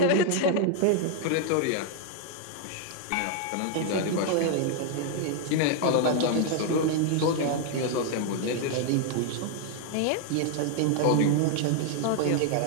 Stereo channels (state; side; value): different; both; correlation 0.00